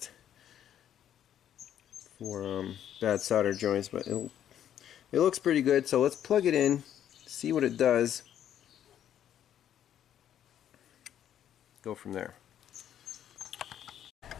for bad solder joints, but it looks pretty good. So let's plug it in, see what it does, go from there.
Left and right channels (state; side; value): quieter; right; 10.3 dB